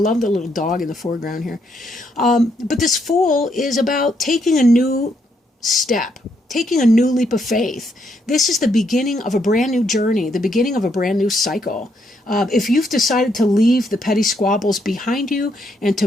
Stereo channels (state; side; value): normal; both; correlation 0.75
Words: the little dog in the foreground here. But this Fool is about taking a new step, taking a new leap of faith. This is the beginning of a brand new journey, the beginning of a brand new cycle. If you've decided to leave the petty squabbles behind you and to